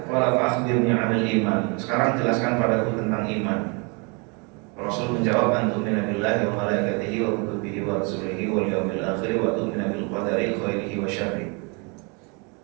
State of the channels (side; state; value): left; quieter; 32.4 dB